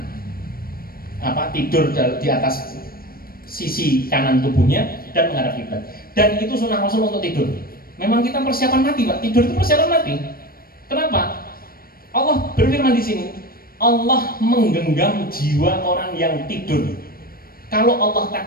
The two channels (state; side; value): late; right; 0.43 ms